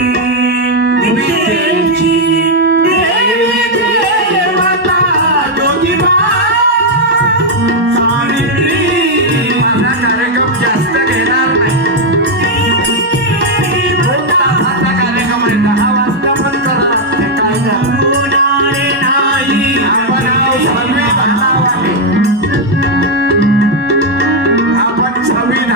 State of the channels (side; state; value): both; normal; correlation 0.00